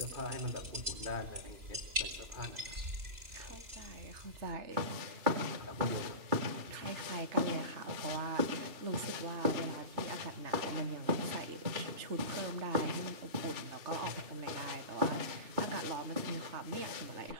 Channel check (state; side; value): late; left; 2.9 ms